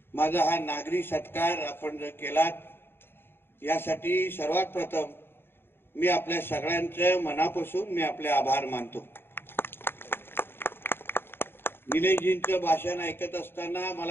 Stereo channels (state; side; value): late; right; 0.11 ms